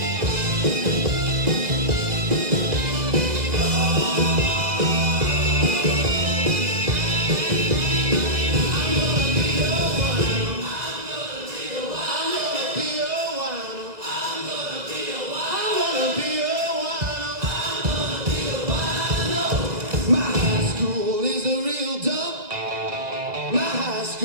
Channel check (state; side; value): late; left; 2.0 ms